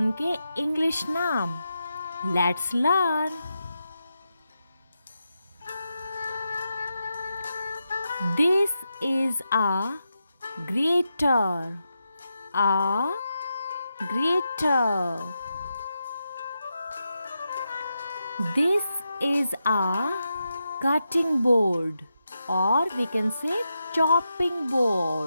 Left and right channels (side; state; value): both; inverted; correlation -0.87